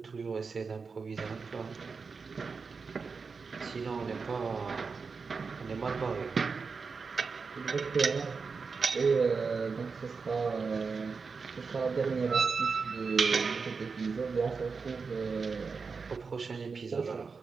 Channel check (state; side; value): quieter; left; 4.9 dB